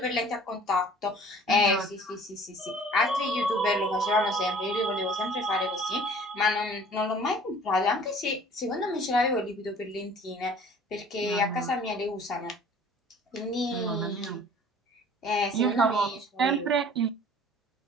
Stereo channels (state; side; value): normal; both; correlation 0.50